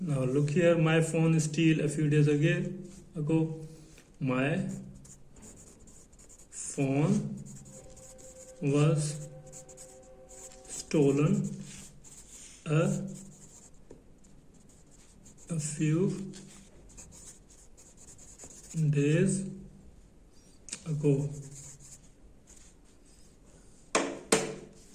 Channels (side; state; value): both; identical; correlation 1.00